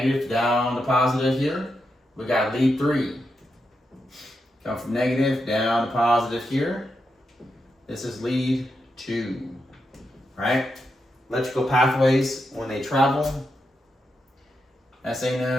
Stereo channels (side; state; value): both; normal; correlation 0.85